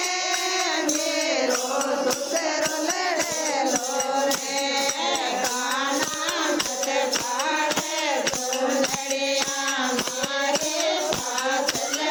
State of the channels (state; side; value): identical; both; correlation 1.00